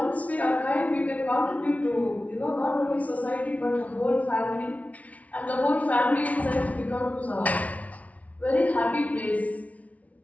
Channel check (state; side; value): late; right; 0.068 ms